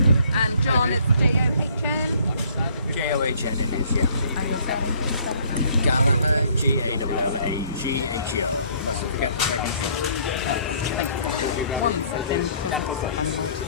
And John, it's J-O-H-N? J-O-H-N it is, yeah. And your surname, can you spell it? Gallagher, G-A-L-L-A-G-H-E-R. Mustn't forget the second G. Thank you. 1 second, because I'm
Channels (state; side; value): inverted; both; correlation -0.59